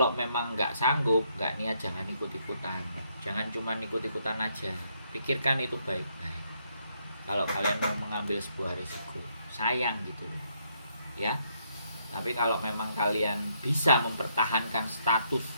memang nggak sanggup, nggak niat, jangan ikut-ikutan, jangan cuma ikut-ikutan aja, pikirkan itu baik-baik. Kalau kalian mau mengambil sebuah risiko, sayang gitu ya. Tapi kalau memang kalian bisa mempertahankan status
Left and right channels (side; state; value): both; inverted; correlation -0.73